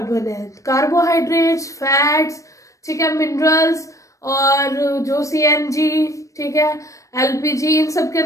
है। कार्बोहाइड्रेट्स, फैट्स, ठीक है, मिनरल्स और जो सीएनजी, ठीक है, एलपीजी, इन सब के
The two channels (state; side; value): late; right; 0.16 ms